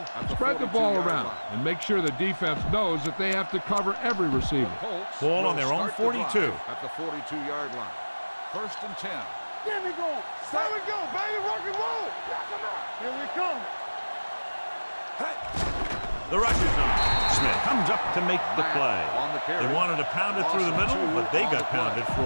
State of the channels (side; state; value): both; inverted; correlation -1.00